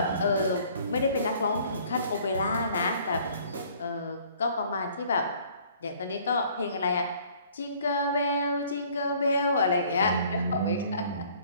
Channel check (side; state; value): both; inverted; correlation -0.57